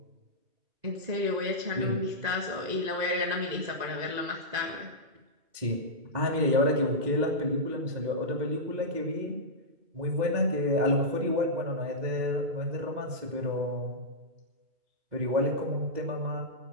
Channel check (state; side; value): late; left; 2.0 ms